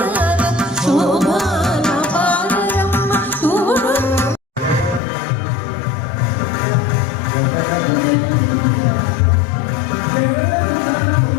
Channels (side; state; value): right; drops out; at 5.0 s